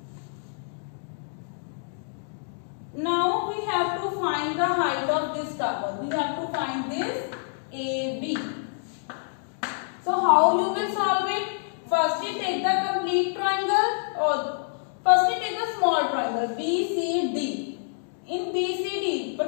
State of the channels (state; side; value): silent; right; digital silence